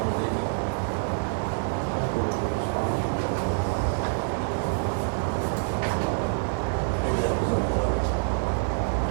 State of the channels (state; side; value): silent; left; digital silence